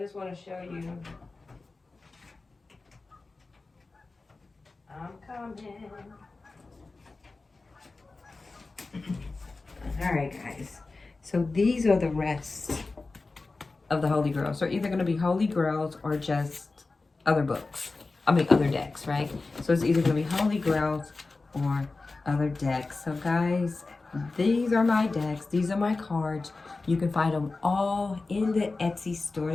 want to show you. I'm coming. All right, guys. So these are the rest of the Holy Grails. So either going to be Holy Grails or just other books. I mean, other decks, right? So it's either going to be Holy Grails or other decks. So guys, these are my decks. These are my cards. You can find them all in the Etsy store.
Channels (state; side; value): quieter; right; 3.6 dB